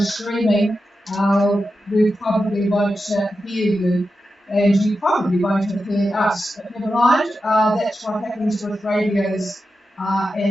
streaming, we probably won't hear you, and you probably won't have heard us. But never mind, that's what happens with radios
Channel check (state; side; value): normal; both; correlation 0.90